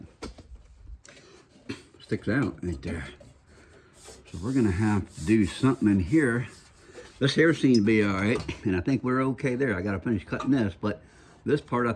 Sticks out right there. So we're gonna have to do something in here. This here seems to be all right, and I think we're okay there. I gotta finish cutting this, but this part, I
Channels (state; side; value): identical; both; correlation 1.00